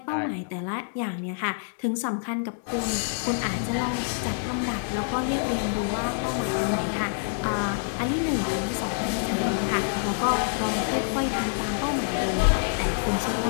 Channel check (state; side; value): silent; right; digital silence